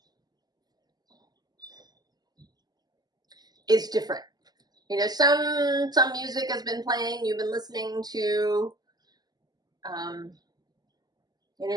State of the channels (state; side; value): late; left; 0.20 ms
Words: is different. You know, some music has been playing, you've been listening to, you know,